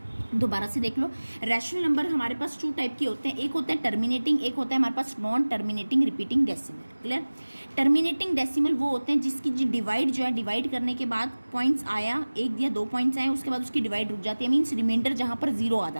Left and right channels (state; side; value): inverted; both; correlation -1.00